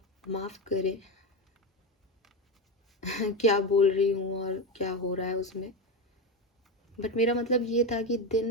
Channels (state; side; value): normal; both; correlation 0.16